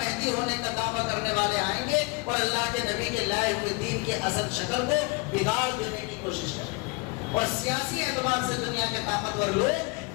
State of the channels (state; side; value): quieter; right; 28.5 dB